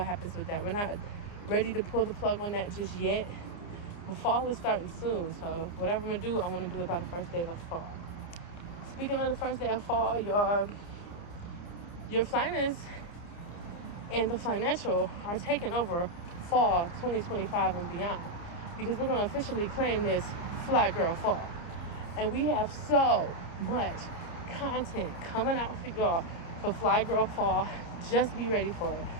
happens with that. We're not ready to pull the plug on that just yet. But fall is starting soon, so whatever I'm going to do, I want to do it by the first day of fall. Speaking of the first day of fall, your Flyness and the Financial are taking over fall 2025 and beyond, because we're going to officially claim this Fly Girl Fall. And we have so much content coming out for y'all for Fly Girl Fall. Just be ready for it.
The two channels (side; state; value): right; late; 29 ms